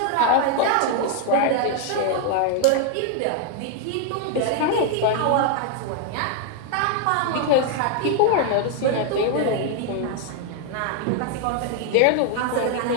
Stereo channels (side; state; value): both; different; correlation 0.00